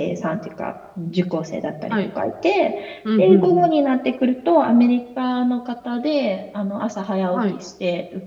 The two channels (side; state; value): both; identical; correlation 1.00